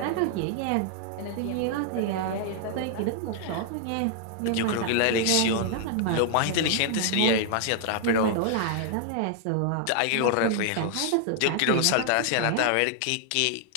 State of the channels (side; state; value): both; different; correlation -0.01